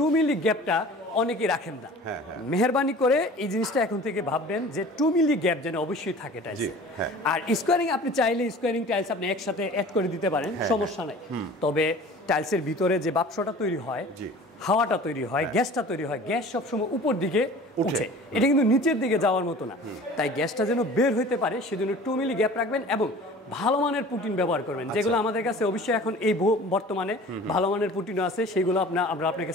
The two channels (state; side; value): normal; both; correlation 0.43